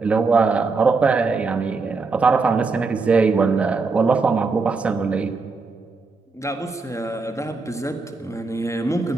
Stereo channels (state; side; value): quieter; left; 4.2 dB